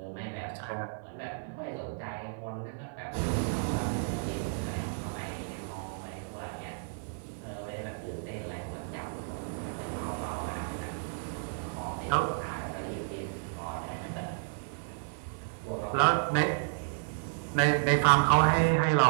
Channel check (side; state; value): left; silent; 56 dB below the other